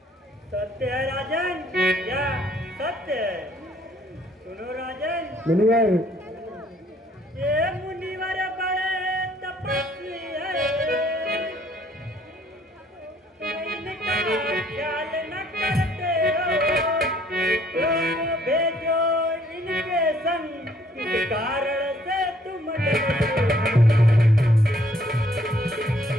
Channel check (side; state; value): both; normal; correlation 0.63